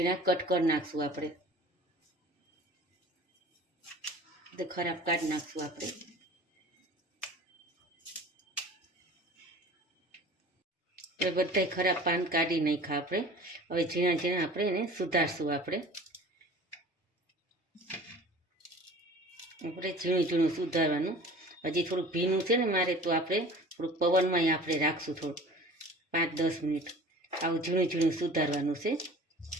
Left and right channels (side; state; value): both; normal; correlation 0.43